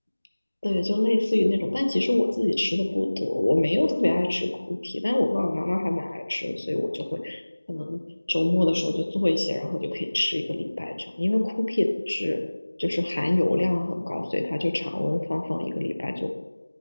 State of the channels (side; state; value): both; inverted; correlation -1.00